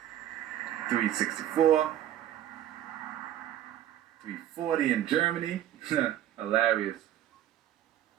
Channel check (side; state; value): left; quieter; 11.9 dB